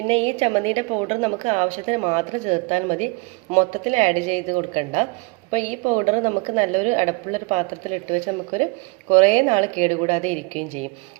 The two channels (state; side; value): quieter; left; 28.2 dB